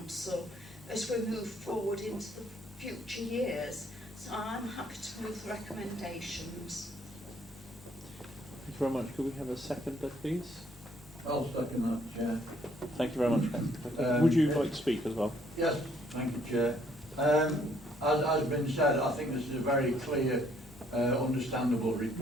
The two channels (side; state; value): both; normal; correlation 0.65